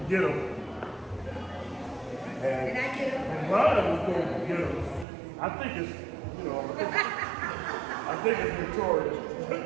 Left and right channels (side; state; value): left; drops out; at 5.1 s